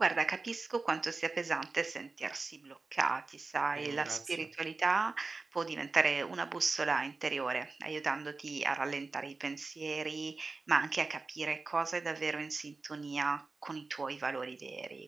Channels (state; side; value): quieter; left; 3.8 dB